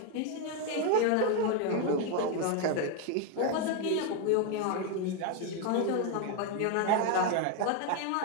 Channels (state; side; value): different; both; correlation 0.01